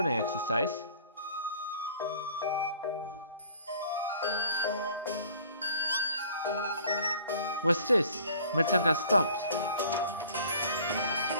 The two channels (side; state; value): both; inverted; correlation -0.52